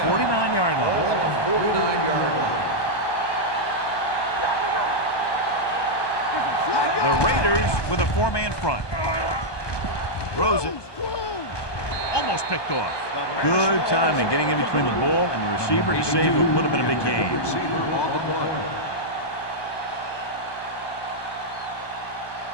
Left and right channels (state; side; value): late; right; 1.2 ms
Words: 49-yard line. Ball on the 49-yard line. The Raiders with a four-man front. Throws it. Almost picked off. Good timing getting in between the ball and the receiver to save what would have been a big game. Receiver on the play.